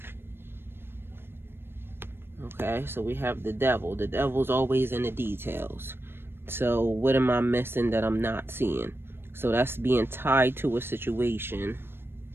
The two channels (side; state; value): left; late; 0.11 ms